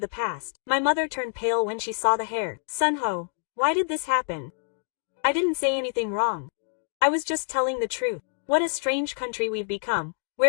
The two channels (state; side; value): silent; right; digital silence